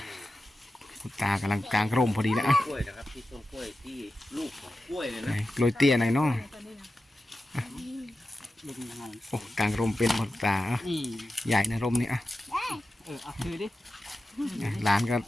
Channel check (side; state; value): both; normal; correlation 0.92